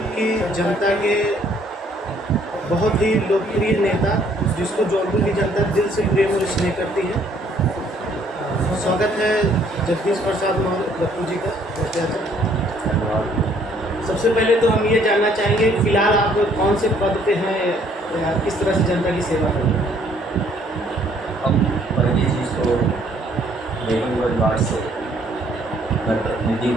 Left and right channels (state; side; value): normal; both; correlation 0.63